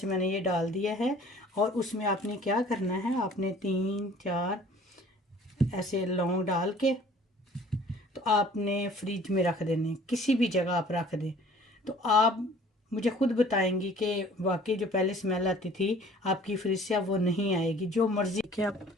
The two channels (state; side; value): normal; both; correlation 0.51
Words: मैंने ये डाल दिया है। और उसमें आपने क्या करना है, आपने 3-4 ऐसे लौंग डाल के तो आपने फ्रिज में रख देने, किसी भी जगह आप रख दें। तो आप मुझे खुद बताएंगी कि वाकई जो पहले स्मेल आती थी आपकी फ्रिज से अब वो नहीं आएगी। जो मर्ज़ी के आप